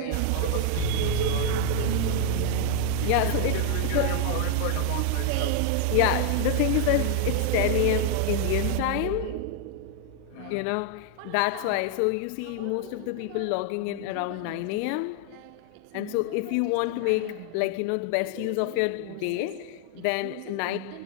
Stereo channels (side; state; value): both; different; correlation 0.00